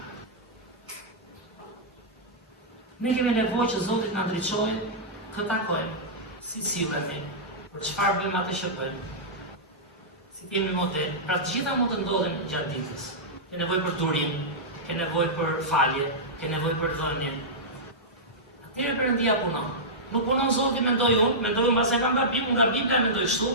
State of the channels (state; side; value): normal; both; correlation -0.12